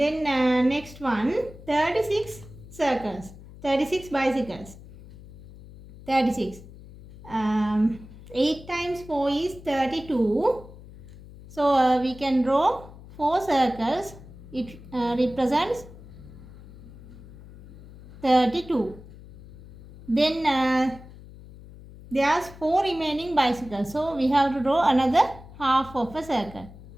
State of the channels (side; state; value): left; noise; hum, 18 dB below the sound